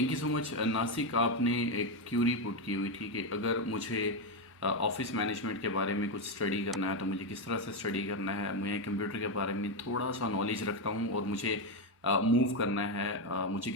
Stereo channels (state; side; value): normal; both; correlation 0.08